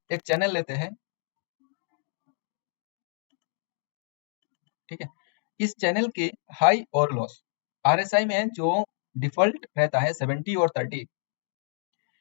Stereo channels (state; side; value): silent; right; digital silence